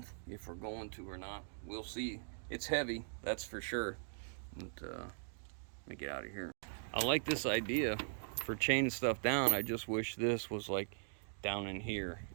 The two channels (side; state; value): left; silent; digital silence